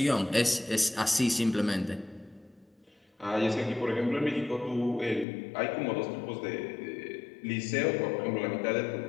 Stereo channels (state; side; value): drops out; right; at 5.2 s